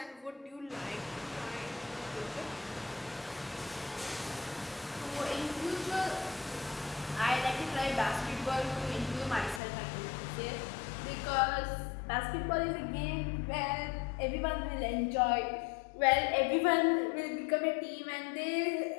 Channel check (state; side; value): drops out; right; at 9.6 s